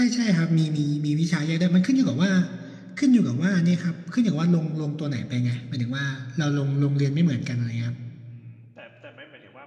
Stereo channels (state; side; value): identical; both; correlation 1.00